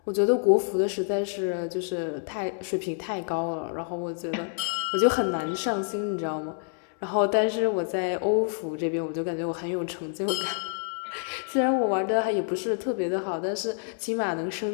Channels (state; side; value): silent; right; 60 dB below the other